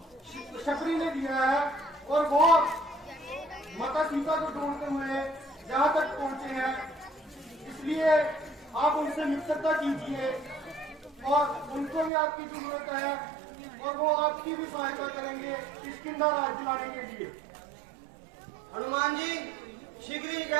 शबरी ने दिया है और वो माता सीता को ढूंढते हुए जहां तक पहुंचे हैं। इसलिए आप उनसे मित्रता कीजिए और उनको भी आपकी जरूरत है और वो आपकी भी सहायता करेंगे इस किंदा राज दिलाने के लिए। हनुमान जी, शीघ्र ही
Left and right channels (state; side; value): drops out; left; at 12.1 s